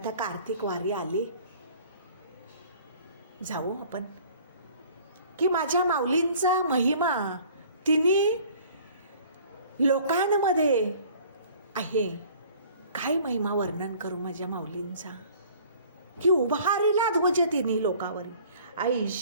कार्तिक वारी आली, जाऊ आपण की माझ्या माऊलींचा महिमा तिने लोकांमध्ये आहे. काय महिमा वर्णन करू माझ्या माऊलींचा की उभारीला ध्वज तिन्ही लोकावरी,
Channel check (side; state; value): both; inverted; correlation -0.51